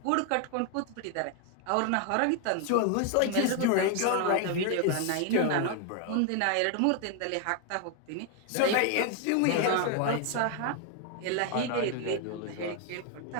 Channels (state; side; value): different; both; correlation 0.00